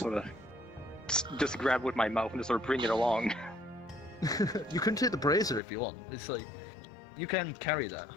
of just grab with my mouth and just sort of bring it along. You can take the brazier if you want. It's like, you can carry that.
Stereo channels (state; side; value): drops out; right; at 5.6 s